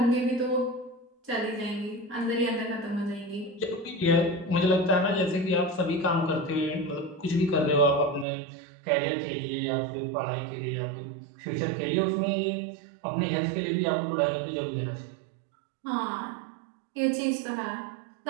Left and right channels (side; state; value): left; drops out; at 8.2 s